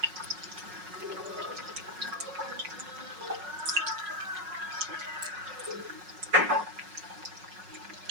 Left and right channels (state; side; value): late; left; 5.5 ms